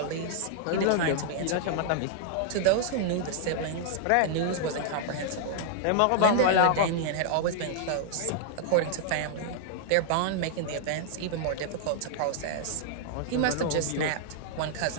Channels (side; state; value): both; different; correlation -0.01